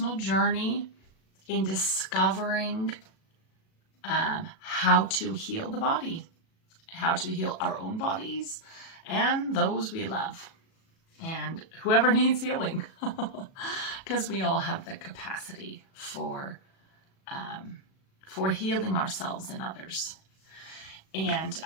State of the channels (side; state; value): right; late; 37 ms